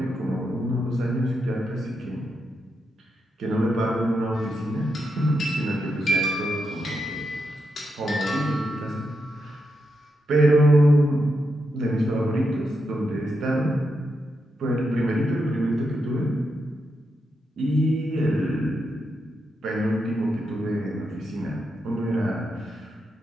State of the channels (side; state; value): both; normal; correlation 0.84